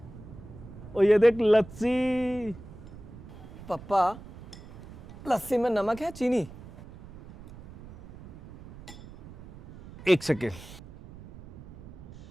और ये देख लस्सी। पापा, लस्सी में नमक है चीनी? एक सेकेंड,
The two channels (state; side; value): noise; right; rumble, 17 dB below the sound